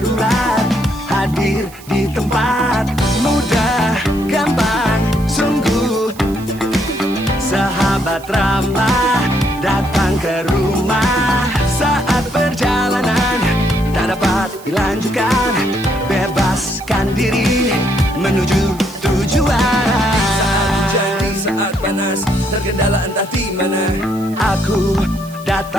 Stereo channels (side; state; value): right; noise; hiss, 21 dB below the sound